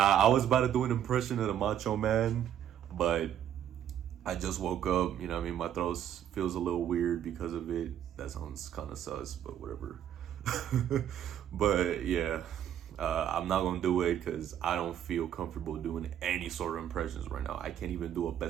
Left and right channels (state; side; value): quieter; left; 10.2 dB